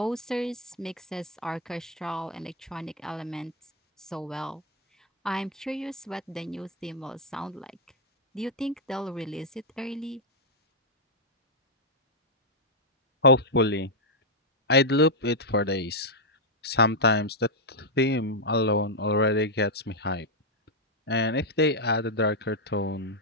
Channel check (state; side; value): normal; both; correlation -0.02